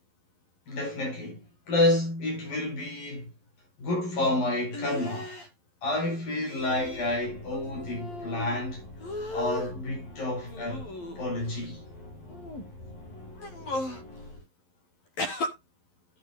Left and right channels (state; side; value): late; right; 11 ms